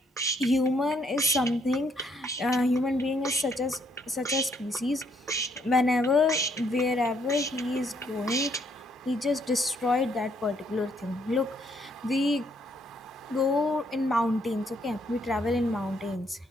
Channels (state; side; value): normal; both; correlation 0.70